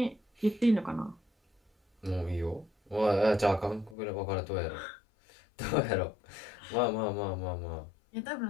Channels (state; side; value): drops out; right; at 4.0 s